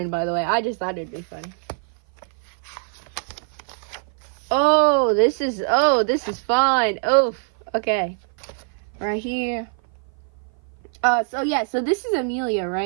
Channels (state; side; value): silent; left; 56 dB below the other